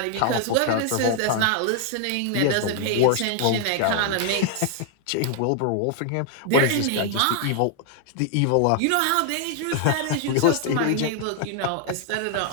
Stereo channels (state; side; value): different; both; correlation 0.00